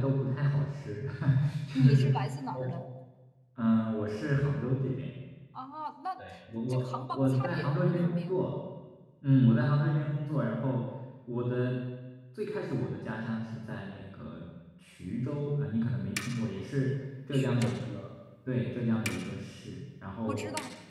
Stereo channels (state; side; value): identical; both; correlation 1.00